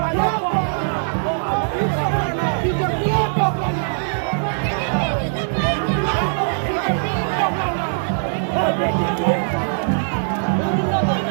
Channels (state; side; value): silent; left; 65 dB below the other